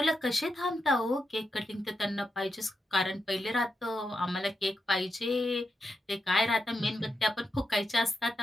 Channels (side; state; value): both; normal; correlation 0.86